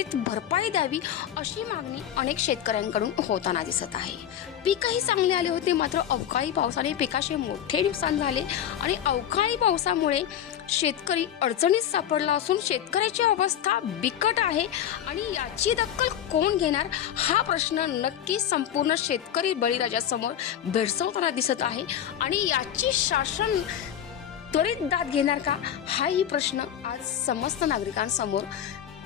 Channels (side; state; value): right; quieter; 10.1 dB